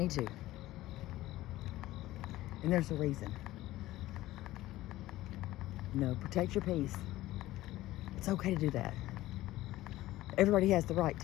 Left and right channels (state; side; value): quieter; right; 16.3 dB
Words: to. And there's a reason. You know, protect your peace. It's okay to do that. Everybody has the right